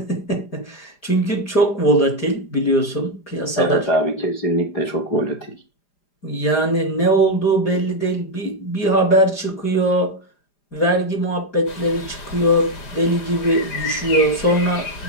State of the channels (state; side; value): late; right; 5.0 ms